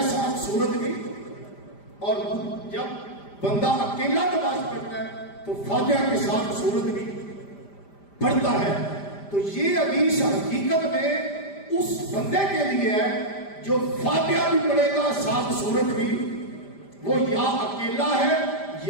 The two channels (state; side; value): late; right; 5.0 ms